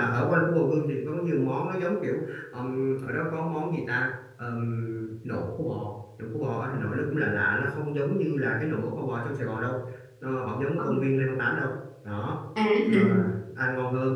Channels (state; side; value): identical; both; correlation 1.00